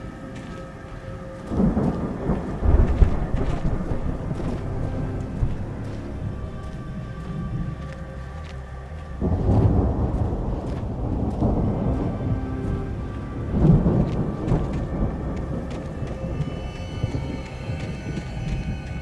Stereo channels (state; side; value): identical; both; correlation 1.00